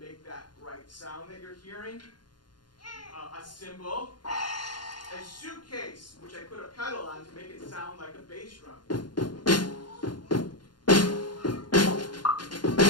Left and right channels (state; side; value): late; right; 0.71 ms